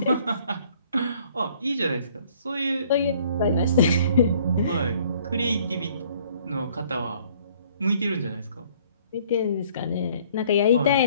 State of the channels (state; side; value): inverted; both; correlation -0.59